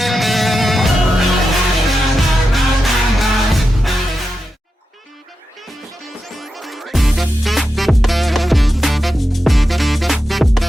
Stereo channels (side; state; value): both; normal; correlation 0.90